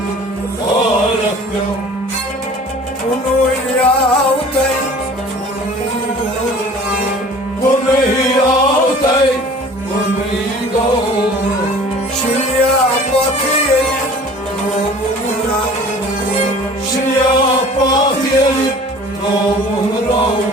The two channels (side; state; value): both; normal; correlation 0.46